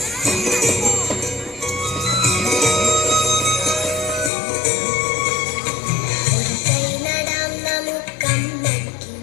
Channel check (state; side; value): drops out; right; at 4.3 s